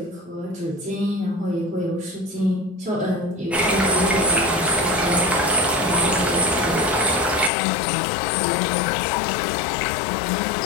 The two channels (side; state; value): right; drops out; at 7.5 s